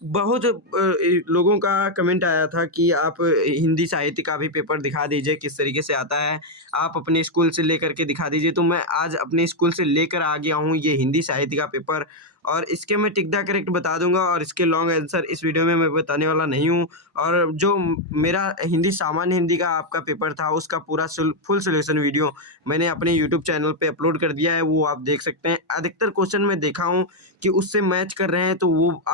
बहुत लोगों का कमेंट आया था कि आप हिंदी साहित्य का भी पेपर दिखा दीजिए, किस तरीके से आता है, आप अपने स्कूल से लेकर के दिखा दीजिए। तो मैं आज अपने स्कूल से लेकर आ गया हूँ ये हिंदी साहित्य का पेपर, और इसके मैं टिक द करेक्ट बता दूंगा, और इसके लॉन्ग आंसर इस वीडियो में मैं बताने वाला नहीं हूँ। और जो मेरा हिंदी सामान्य हिंदी का आपका पेपर था, उसका पूरा फुल सोल्यूशन वीडियो मैंने अपने यूट्यूब चैनल पे अपलोड कर दिया है, वो आप देख सकते हैं। अधिकतर क्वेश्चन मैं देखा हूँ कि उससे मैच कर रहे हैं, तो वो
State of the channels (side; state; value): both; normal; correlation 0.02